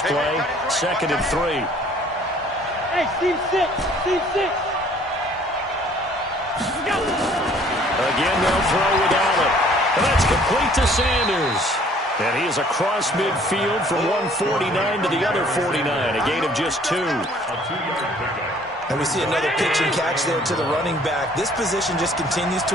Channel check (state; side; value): normal; both; correlation 0.57